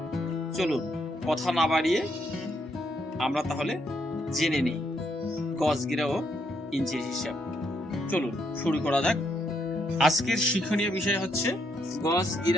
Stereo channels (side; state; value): both; normal; correlation 0.76